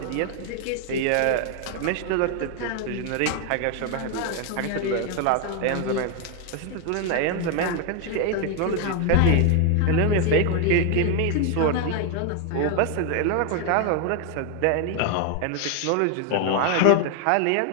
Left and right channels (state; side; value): different; both; correlation 0.01